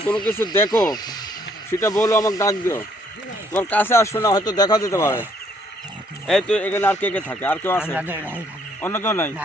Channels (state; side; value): normal; both; correlation 0.67